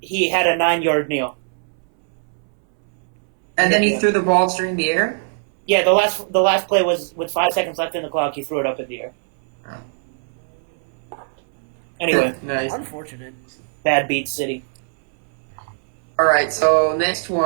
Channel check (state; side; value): silent; left; 65 dB below the other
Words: he had a 9 yard kneel. And then he threw the ball during the air. Yeah, the last play was with 5 seconds left in the clock. He threw it up in the air. Oh. Anyway, Nice. Unfortunate. bad beat city. All right, so next